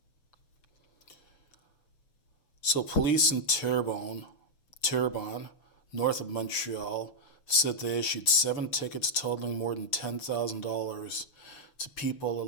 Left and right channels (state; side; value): late; right; 6.7 ms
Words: So police in Terrebonne, north of Montreal, said they issued 7 tickets totaling more than $10,000 to people